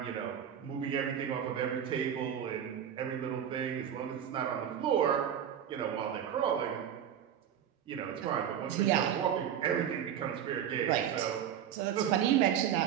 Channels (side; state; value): left; quieter; 9.4 dB